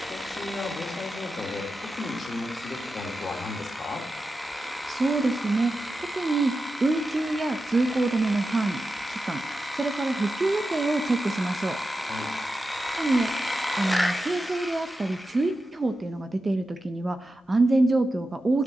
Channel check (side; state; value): both; normal; correlation 0.91